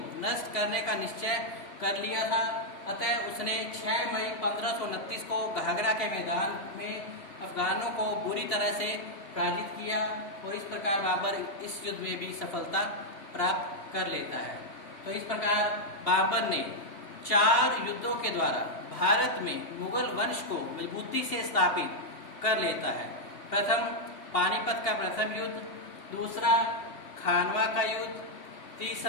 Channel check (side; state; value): right; late; 3.0 ms